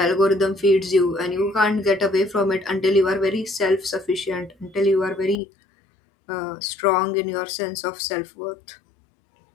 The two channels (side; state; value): right; drops out; at 5.4 s